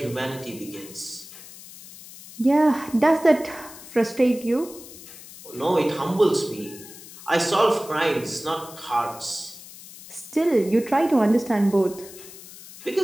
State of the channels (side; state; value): left; noise; hiss, 17 dB below the sound